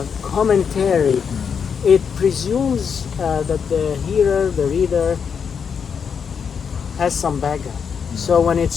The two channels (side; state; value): right; quieter; 6.7 dB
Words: commentary. It presumes that the hearer, the reader, has some background. So when it